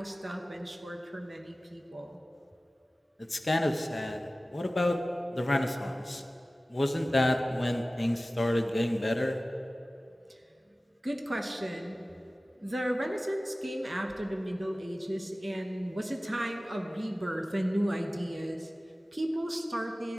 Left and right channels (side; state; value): both; normal; correlation 0.97